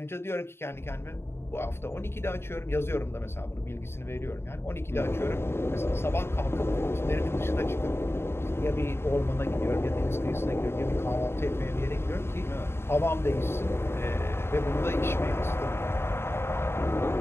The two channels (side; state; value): right; late; 0.12 ms